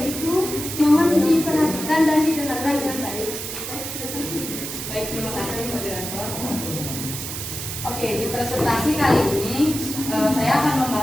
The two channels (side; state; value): right; noise; hiss, 6 dB below the sound